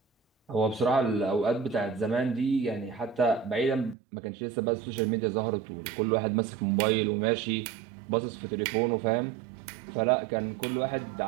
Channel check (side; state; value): left; drops out; at 4.0 s